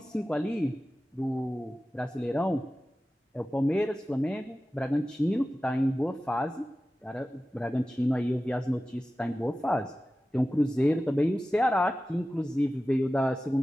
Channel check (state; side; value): normal; both; correlation 0.95